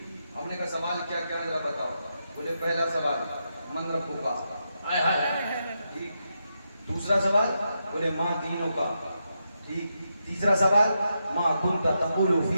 ہم نے کہا سوال کیا کیا ذرا بتاؤ؟ بولے پہلا سوال من ربک کا، ٹھیک۔ دوسرا سوال بولے ما دینک کا، ٹھیک۔ تیسرا سوال ما کنت تقول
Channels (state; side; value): inverted; both; correlation -0.84